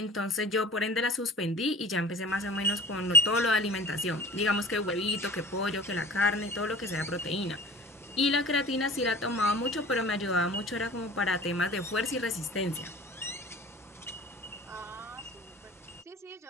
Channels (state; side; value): normal; both; correlation 0.43